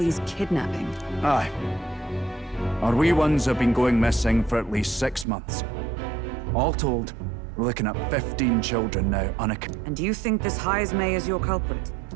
kidnapping? Aye. Our wee ones have been going missing for at least 6 months. All told, we're looking at 15 children now And do you think this Heismay is your culprit?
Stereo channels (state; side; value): drops out; left; at 5.2 s